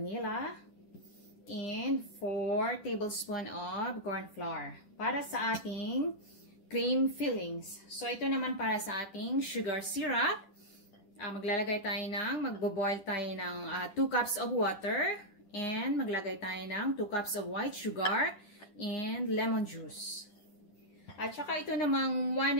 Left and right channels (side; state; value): right; late; 10 ms